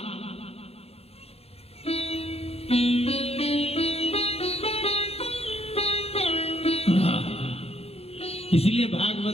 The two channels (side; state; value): right; late; 0.29 ms